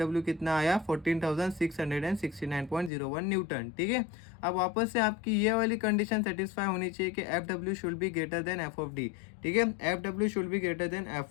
कितना आया 14,669.01 न्यूटन, ठीक है। अब वापस से आपकी ये वाली कंडीशन सेटिस्फाई होनी चाहिए कि FW should be greater than F of D, ठीक है। F W should be greater than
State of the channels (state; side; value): drops out; right; at 2.9 s